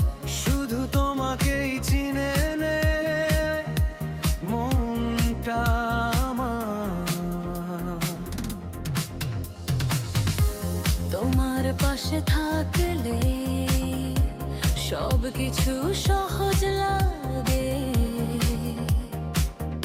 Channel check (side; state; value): both; identical; correlation 1.00